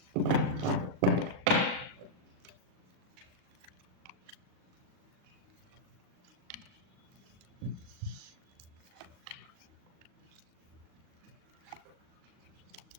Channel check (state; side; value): late; left; 38 ms